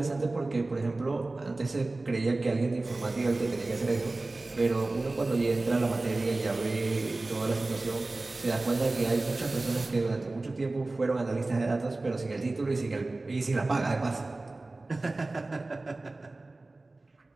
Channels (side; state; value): left; quieter; 3.1 dB